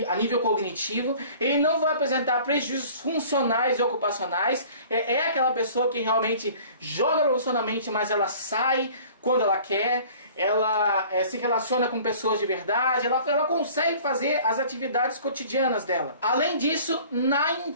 a nível cognitivo, ele não vai apresentar prejuízos funcionais e ocupacionais. É aquela pessoa que realmente joga profissionalmente, mas ela sai quando ela quer, ela se relaciona com pessoas de verdade, ela consegue fazer as atividades cotidianas dela. Além disso, na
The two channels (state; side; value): inverted; both; correlation -0.48